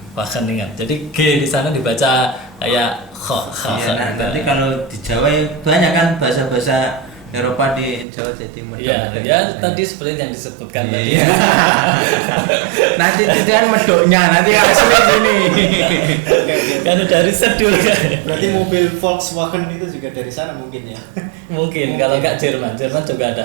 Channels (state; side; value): drops out; left; at 8.1 s